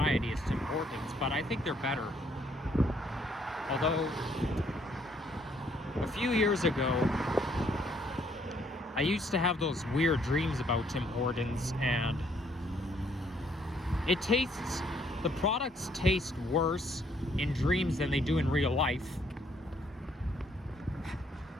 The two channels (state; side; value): normal; both; correlation 0.67